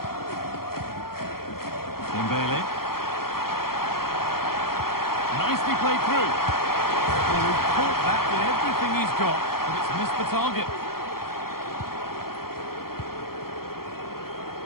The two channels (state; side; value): late; right; 0.94 ms